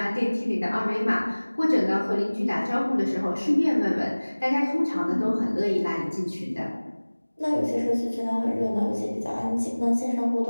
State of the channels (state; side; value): inverted; both; correlation -1.00